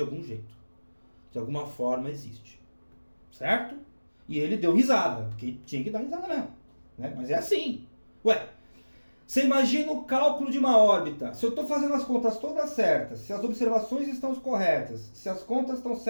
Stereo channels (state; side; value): inverted; both; correlation -1.00